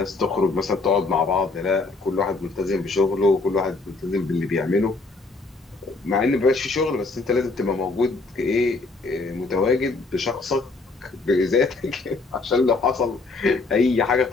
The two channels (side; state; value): right; quieter; 3.6 dB